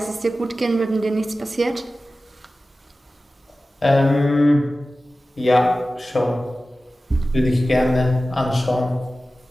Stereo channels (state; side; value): normal; both; correlation 0.95